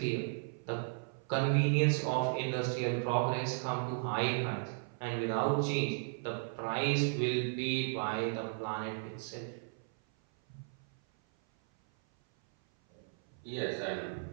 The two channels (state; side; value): silent; left; 54 dB below the other